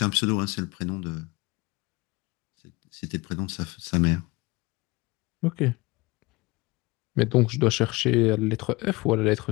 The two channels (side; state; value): right; quieter; 22.8 dB